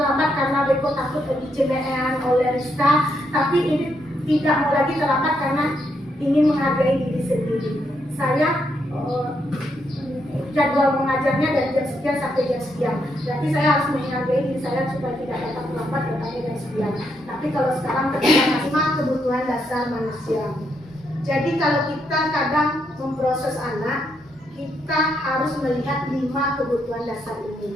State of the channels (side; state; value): both; normal; correlation 0.78